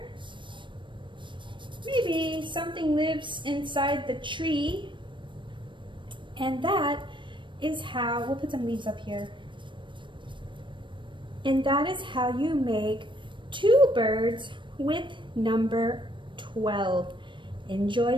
Maybe something lives inside the tree. And that is how, we'll put some leaves up here. And that is how you make two birds with number 12. Enjoy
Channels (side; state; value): left; late; 0.23 ms